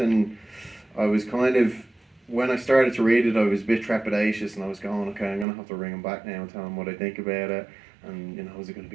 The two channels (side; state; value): left; drops out; at 5.5 s